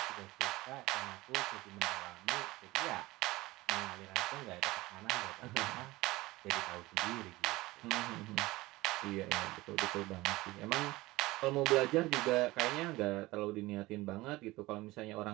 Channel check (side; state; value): left; quieter; 19.7 dB